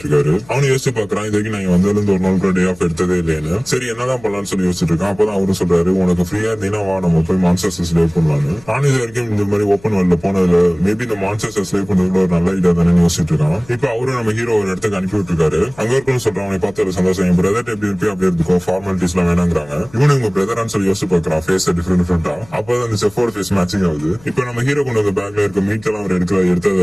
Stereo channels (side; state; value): left; noise; hum, 24 dB below the sound